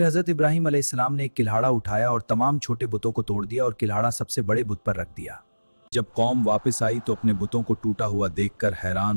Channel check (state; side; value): inverted; both; correlation -1.00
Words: हज़रत इब्राहीम अलैहिस्सलाम ने एक किल्हाड़ा उठाया और तमाम छोटे बुतों को तोड़ दिया और किल्हाड़ा सबसे बड़े बुत पर रख दिया। जब कौम वापस आई तो अपने बुतों को टूटा हुआ देखकर